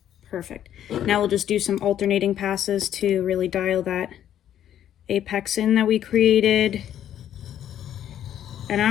Perfect. Now we'll just do some alternating passes to really dial that apex in that we created. And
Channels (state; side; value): quieter; right; 10.7 dB